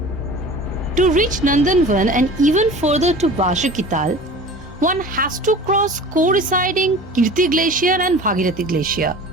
To reach Nandanvan and even further to Vashakital, one has to cross coinciding Kirti Glacier and Bhagirathi Glacier.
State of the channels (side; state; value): both; normal; correlation 0.40